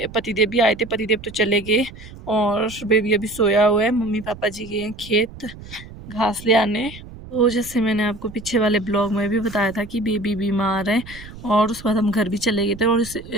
पतिदेव भी आए थे। पतिदेव तो चले गए और बेबी अभी सोया हुआ है। मम्मी पापा जी गए हैं खेत घास ले आने। तो जैसे मैंने आपको पीछे वाले ब्लॉग में भी बताया था कि बेबी बीमार है। और उसके बाद हम घर भी चले गए थे और इस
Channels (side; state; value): right; noise; rumble, 16 dB below the sound